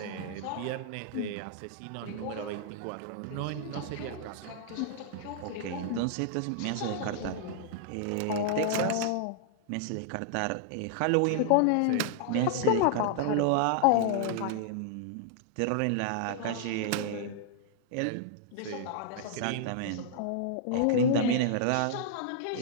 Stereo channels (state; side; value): different; both; correlation -0.01